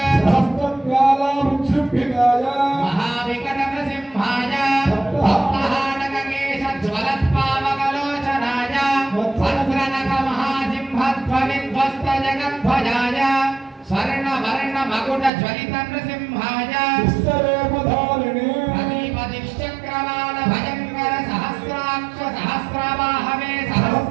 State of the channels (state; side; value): drops out; left; at 15.3 s